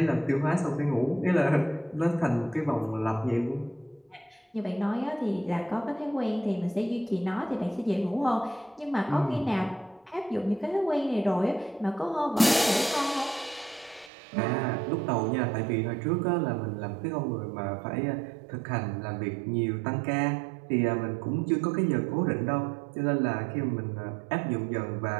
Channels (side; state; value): left; drops out; at 14.1 s